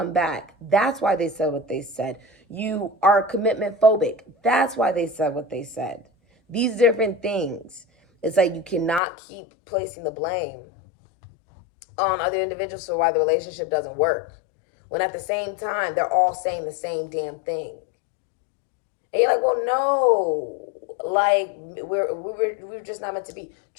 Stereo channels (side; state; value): right; drops out; at 9.0 s